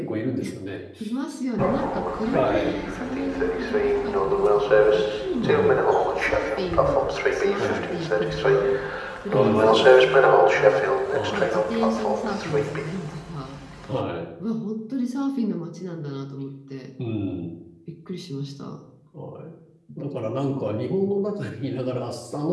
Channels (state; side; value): identical; both; correlation 1.00